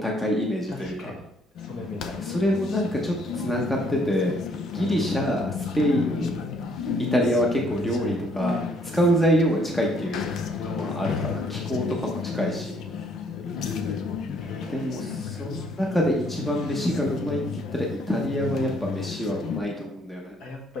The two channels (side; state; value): both; normal; correlation 0.65